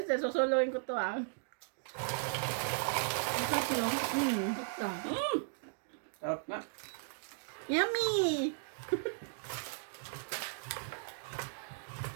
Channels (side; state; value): left; silent; digital silence